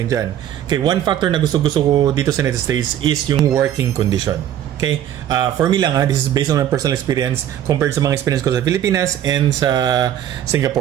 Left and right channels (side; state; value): left; quieter; 10.9 dB